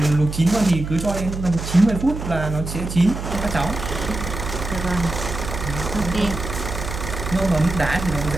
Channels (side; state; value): right; noise; hum, 7 dB below the sound